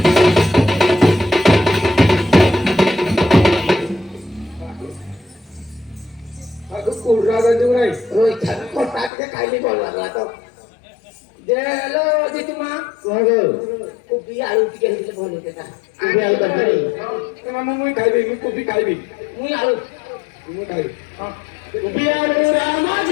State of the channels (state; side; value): drops out; right; at 9.1 s